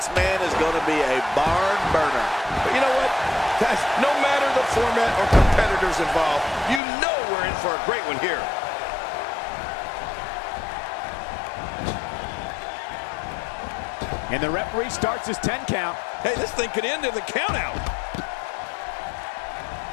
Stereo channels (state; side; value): drops out; right; at 6.8 s